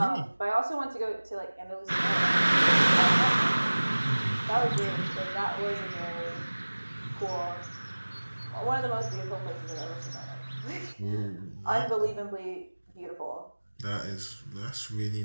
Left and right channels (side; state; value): both; inverted; correlation -1.00